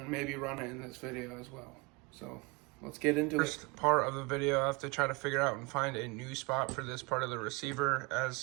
maybe run it in this video as well. So let's get into it. First part of the video, I have to try to figure out and find a new spot for this part of the receiver.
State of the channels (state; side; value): quieter; left; 27.6 dB